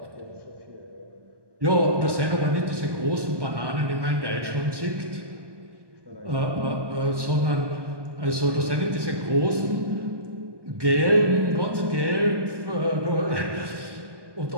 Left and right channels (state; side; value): late; left; 1.2 ms